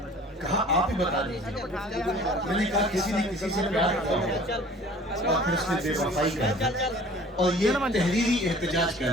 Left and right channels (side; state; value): both; normal; correlation 0.48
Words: کہا آپ ہی بتا دیجیے. میں نے کہا کسی نے کسی سے پیار کیا اور پھر اس نے بے وفائی کر دی اور یہ تحریری احتجاج کر